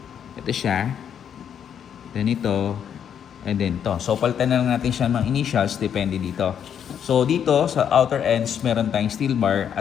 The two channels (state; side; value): quieter; right; 8.5 dB